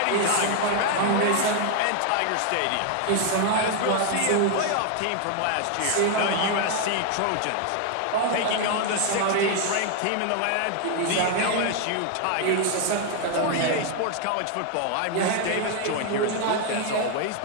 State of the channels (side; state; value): both; different; correlation 0.00